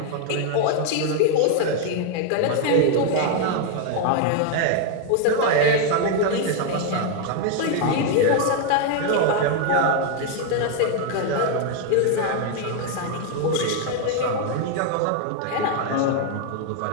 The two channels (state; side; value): different; both; correlation 0.00